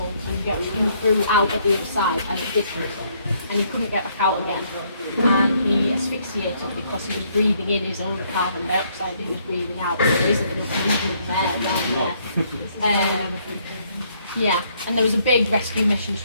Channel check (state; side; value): inverted; both; correlation -0.69